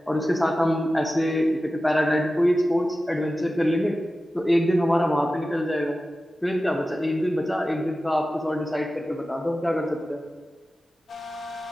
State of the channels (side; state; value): both; normal; correlation 0.94